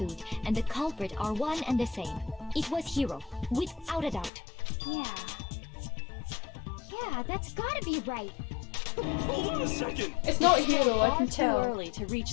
and the culprit are one and the same. It was Hero, without a doubt. Yeah. Yeah, that's gotta be right. Hold on a second. It's not Hero, I can Far too tell. early to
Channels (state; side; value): drops out; right; at 4.3 s